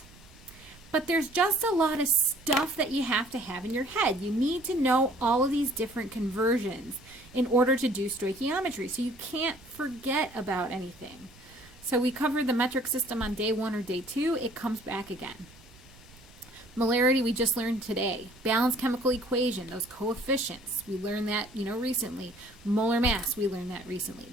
but there's just a lot of stuff that you have to have in your head. You need to know all of these different conversions in order to do stoichiometry, so you can't forget about anything. So we covered the metric system on day 1 or day 2. It comes back again. Molarity we just learned today. Balanced chemical equation, those coefficients, we learned that recently. Molar mass, we learned that recently.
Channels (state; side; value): noise; right; rumble, 24 dB below the sound